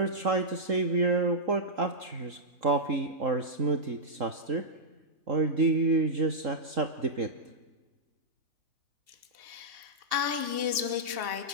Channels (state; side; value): late; left; 2.7 ms